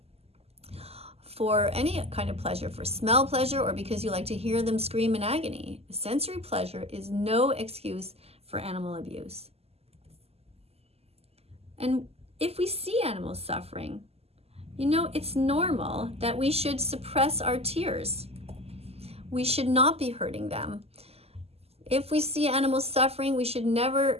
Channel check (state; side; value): late; left; 0.29 ms